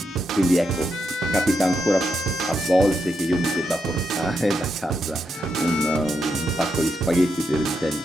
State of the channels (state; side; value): normal; both; correlation 0.82